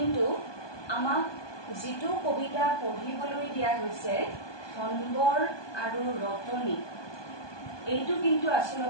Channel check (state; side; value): late; right; 1.2 ms